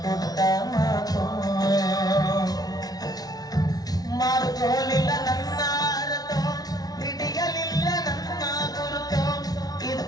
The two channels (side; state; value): right; late; 0.19 ms